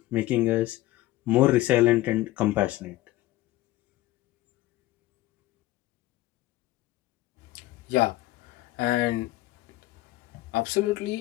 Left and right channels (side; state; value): right; quieter; 16.9 dB